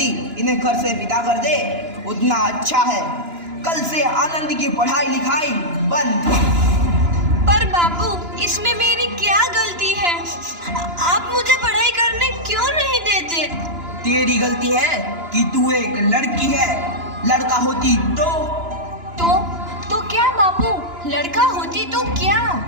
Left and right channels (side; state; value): left; late; 2.9 ms